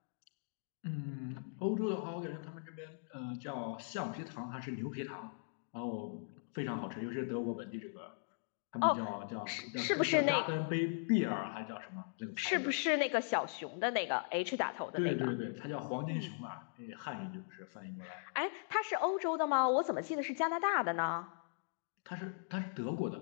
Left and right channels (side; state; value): right; silent; digital silence